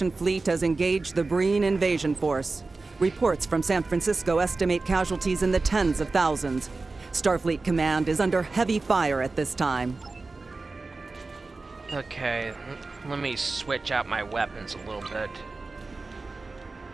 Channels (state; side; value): quieter; left; 3.7 dB